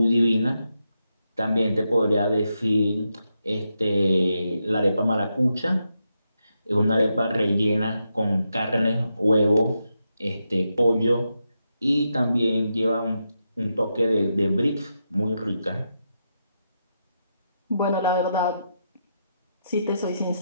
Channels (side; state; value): both; inverted; correlation -0.84